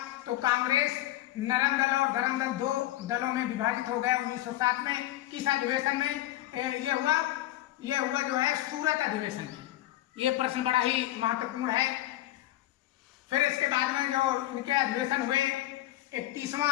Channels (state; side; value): quieter; right; 15.1 dB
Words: तो कांग्रेस नरम दल और गरम दल 2 दलों में विभाजित हो गया 1907 में। किस अधिवेशन में ये हुआ जो है सूरत अधिवेशन में। ये प्रश्न बड़ा ही महत्वपूर्ण है। फिर इसके बाद में जो इनके अधिवेशन हुए, 31वां